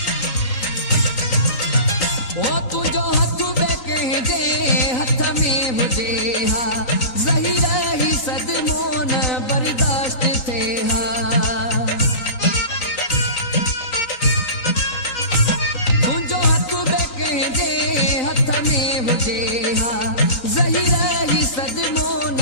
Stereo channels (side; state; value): right; late; 3.8 ms